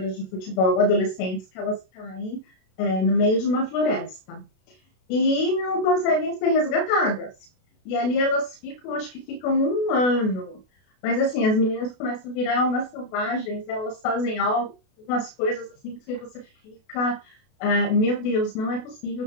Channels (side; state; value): right; late; 32 ms